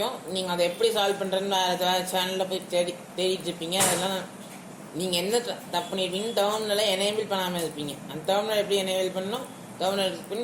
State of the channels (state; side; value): identical; both; correlation 1.00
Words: நீங்கள் அதை எப்படி சால்வ் பண்ணுறதுன்னு வேறு சேனலில் போய் தேடிட்டு இருப்பீங்க. அதெல்லாம் நீங்கள் என்ன தப்பு பண்ணியிருப்பீங்க, டெர்மினலை எனேபிள் பண்ணாமல் இருப்பீங்க. அந்த டெர்மினல் எப்படி எனேபிள் பண்ணணும், டெர்மினல் கிளிக் பண்ணி